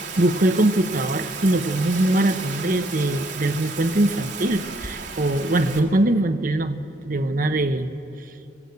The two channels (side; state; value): both; normal; correlation 0.69